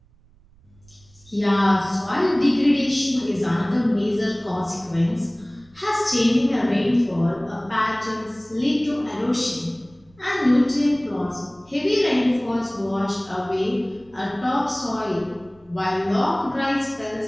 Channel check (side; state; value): right; noise; rumble, 29 dB below the sound